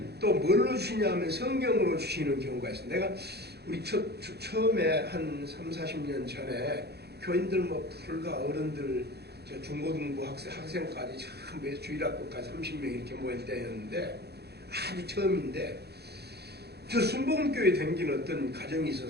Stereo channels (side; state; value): left; late; 0.48 ms